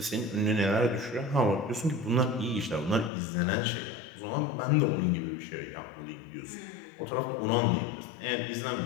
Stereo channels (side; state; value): right; drops out; at 3.1 s